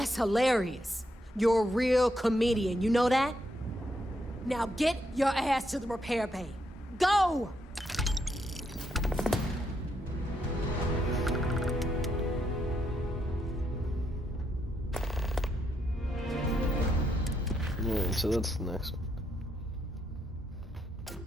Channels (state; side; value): normal; both; correlation 0.78